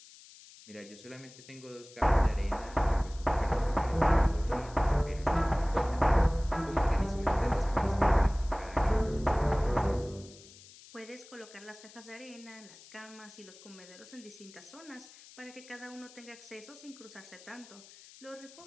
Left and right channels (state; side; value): noise; left; hiss, 21 dB below the sound